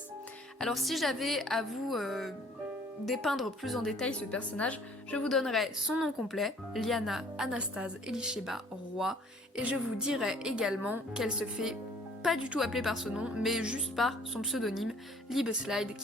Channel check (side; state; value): both; normal; correlation 0.56